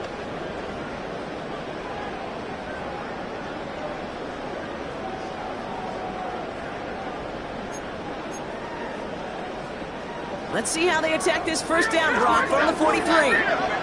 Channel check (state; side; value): identical; both; correlation 1.00